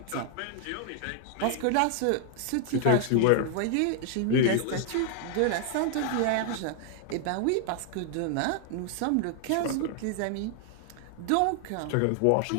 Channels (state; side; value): different; both; correlation 0.00